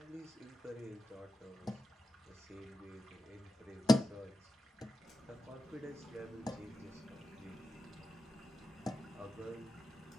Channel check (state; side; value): normal; both; correlation 0.91